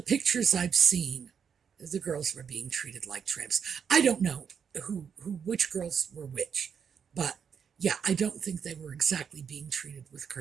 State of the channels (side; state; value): left; quieter; 7.1 dB